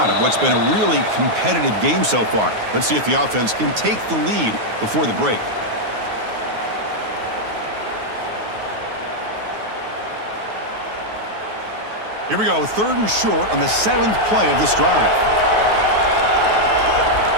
of what's been a really competitive game so far. Let's see if the offense can take the lead before the break. Here we go, 3rd and short on the 7th play of this drive.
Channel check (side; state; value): left; late; 9.4 ms